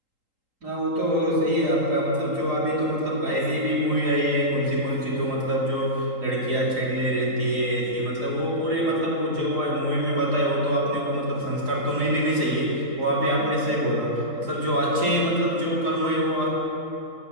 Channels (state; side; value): late; left; 3.8 ms